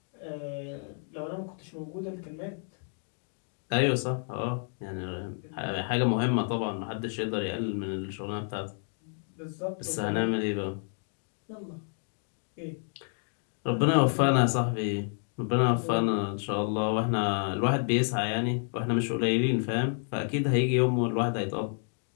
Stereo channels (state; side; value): silent; right; 58 dB below the other